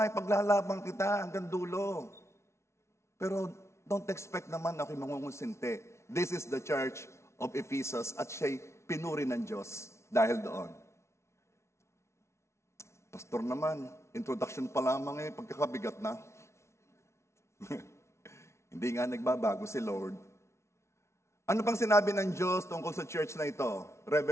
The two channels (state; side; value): late; right; 0.13 ms